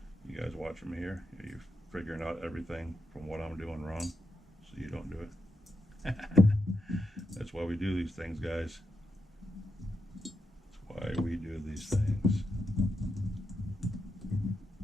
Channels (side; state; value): both; normal; correlation 0.84